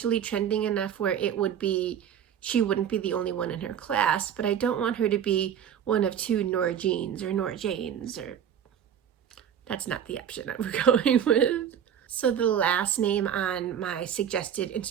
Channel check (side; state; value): left; quieter; 8.9 dB